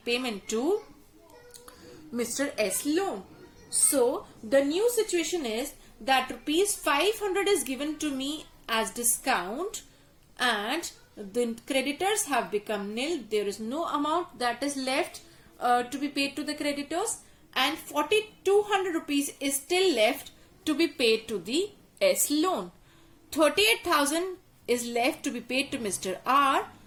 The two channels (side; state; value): both; identical; correlation 1.00